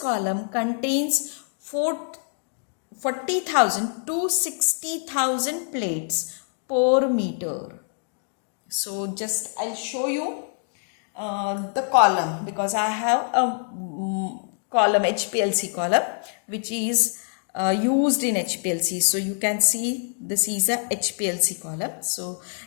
column contains 40,000 to 60,000 plates per meter. So just I'll show you the column because I have a column HPLC column which is used in HPLC. So you can see this is a HPLC column. So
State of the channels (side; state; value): right; silent; 56 dB below the other